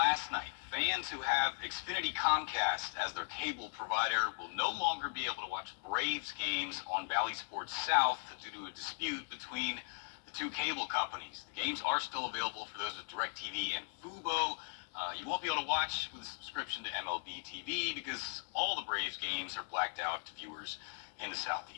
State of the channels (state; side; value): silent; right; 52 dB below the other